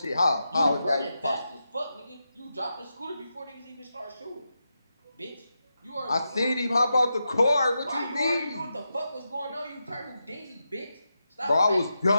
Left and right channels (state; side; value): inverted; both; correlation -0.88